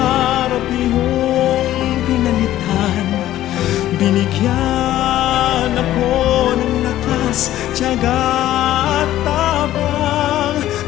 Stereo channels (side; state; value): right; quieter; 13.6 dB